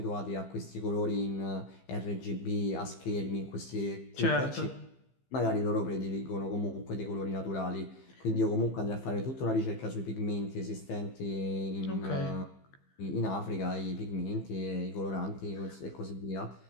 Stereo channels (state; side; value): late; right; 15 ms